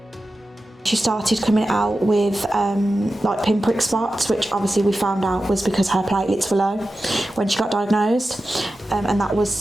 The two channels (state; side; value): normal; both; correlation 0.93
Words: She started coming out with like pinprick spots, which obviously we found out was because her platelets were low when she got diagnosed, and that